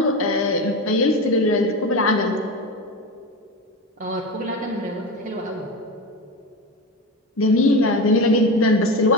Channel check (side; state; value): both; normal; correlation 0.22